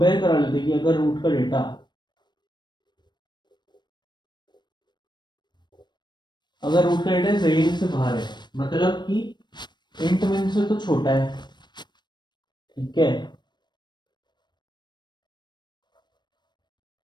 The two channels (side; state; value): right; late; 0.22 ms